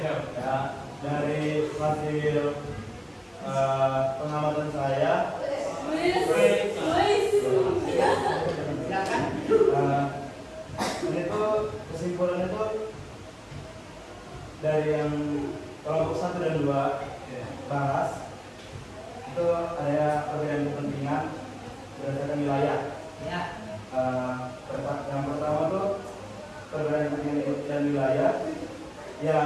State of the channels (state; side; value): identical; both; correlation 1.00